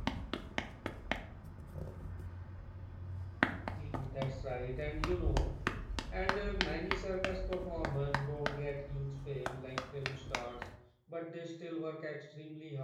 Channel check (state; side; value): identical; both; correlation 1.00